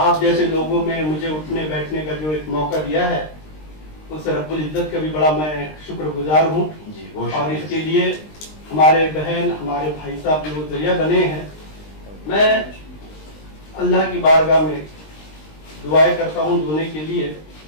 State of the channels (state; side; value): late; right; 20 ms